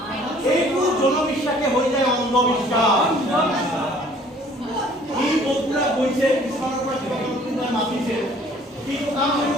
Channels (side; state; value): both; normal; correlation 0.55